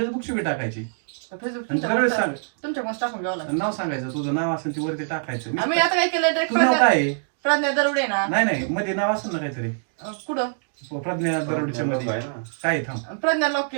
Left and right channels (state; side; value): silent; left; digital silence